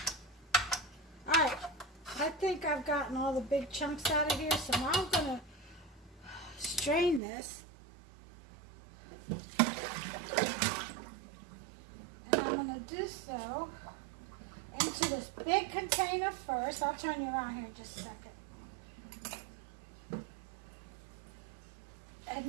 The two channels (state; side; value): drops out; left; at 7.2 s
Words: Alright, I think I've gotten all the big chunks out of here, so now I'm going to strain this. And I'm going to do so into this big container first. I'll turn you around here in just a second. And